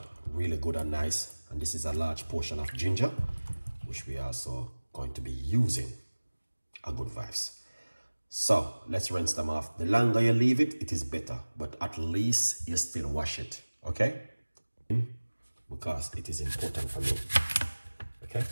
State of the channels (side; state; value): both; inverted; correlation -1.00